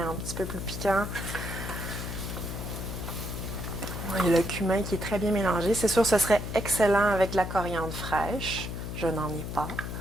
petit peu plus piquant. Il y a le cumin qui est très bien mélangé. C'est sûr, ce serait excellent avec de la coriandre fraîche. Je n'en ai pas.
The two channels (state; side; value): noise; left; hum, 6 dB below the sound